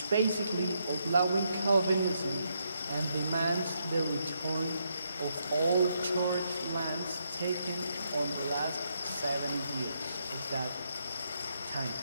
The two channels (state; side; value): inverted; both; correlation -0.78